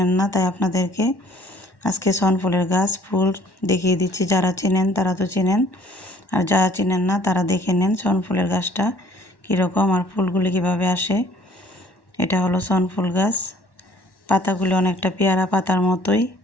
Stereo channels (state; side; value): late; right; 1.1 ms